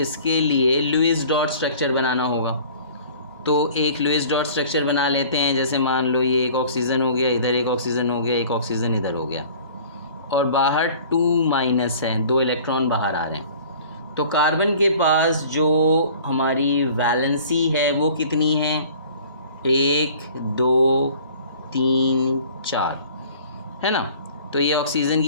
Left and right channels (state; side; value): inverted; both; correlation -0.48